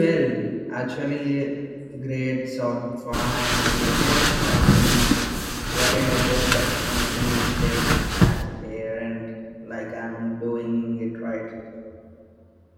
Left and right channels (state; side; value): identical; both; correlation 1.00